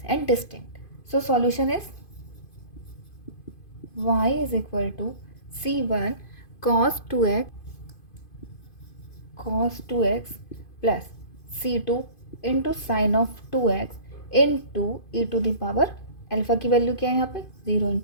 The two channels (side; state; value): right; late; 2.5 ms